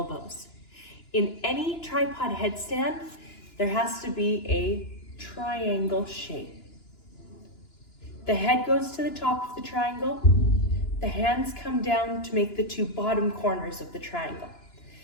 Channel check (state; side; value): late; right; 2.9 ms